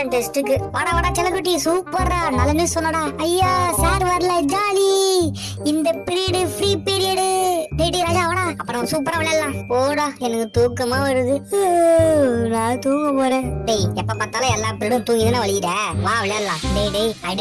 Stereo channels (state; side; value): identical; both; correlation 1.00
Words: டெஸ்ட்டுக்கு. வாடா செல்லக்குட்டி, சூப்பர்ரா, நல்ல நியூஸ் சொன்னடா. ஐயா சார் வரல, ஜாலி. இந்த பீரியட் ஃப்ரீ பீரியட். டேய் ராஜா வாடா, அப்புறம் சூப்பரா விளையாடலாம். போடா, எனக்கு தூக்கமா வருது. நான் தூங்க போறேன். டேய், எப்ப பார்த்தாலும் எல்லா பீரியடும் தூங்கி தானே வலிக்கிற. வா விளையாடலாம். டேய்